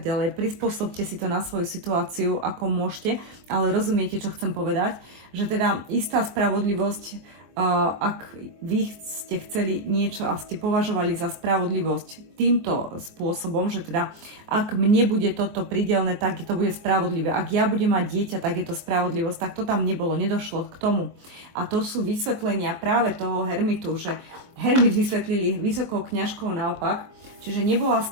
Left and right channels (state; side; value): late; left; 24 ms